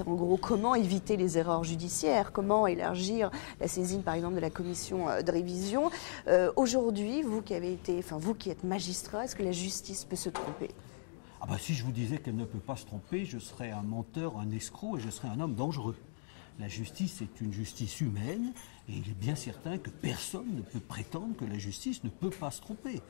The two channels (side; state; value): right; silent; digital silence